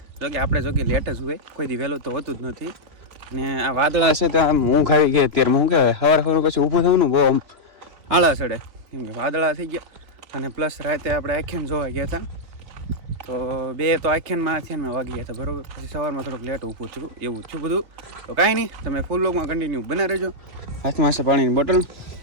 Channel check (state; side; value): late; left; 3.4 ms